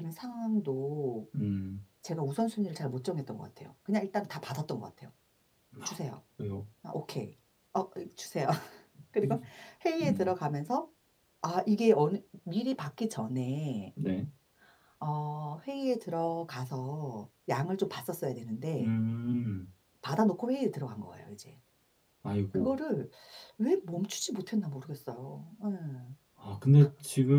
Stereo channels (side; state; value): both; identical; correlation 1.00